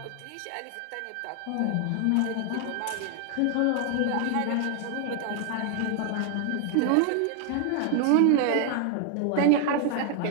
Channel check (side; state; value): both; different; correlation 0.00